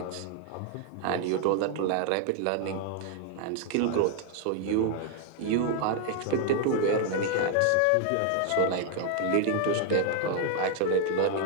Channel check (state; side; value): different; both; correlation 0.00